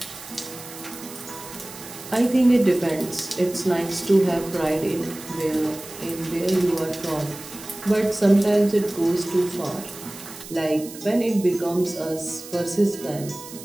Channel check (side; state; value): right; noise; hiss, 15 dB below the sound